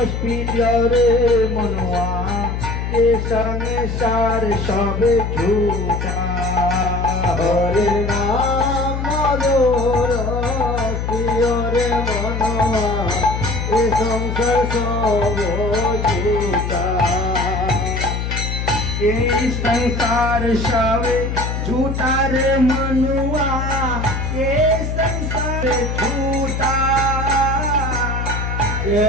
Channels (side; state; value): left; noise; hum, 2 dB below the sound